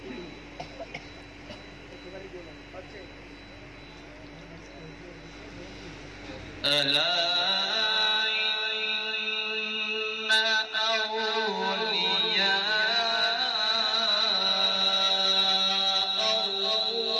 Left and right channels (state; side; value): identical; both; correlation 1.00